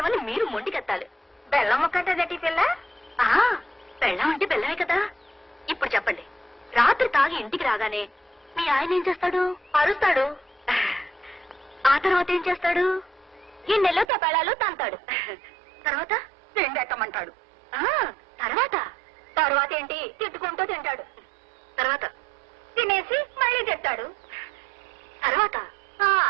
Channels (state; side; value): drops out; left; at 14.1 s